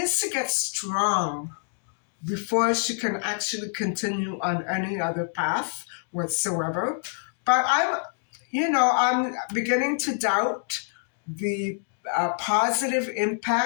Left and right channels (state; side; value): silent; right; digital silence